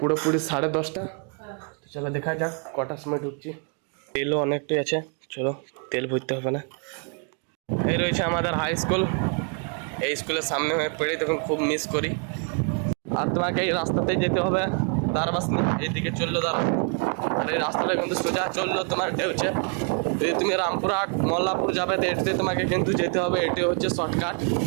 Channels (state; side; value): quieter; left; 40.0 dB